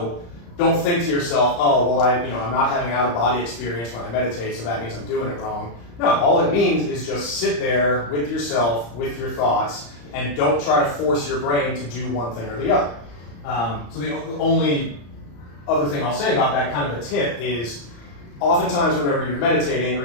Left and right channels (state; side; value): late; right; 35 ms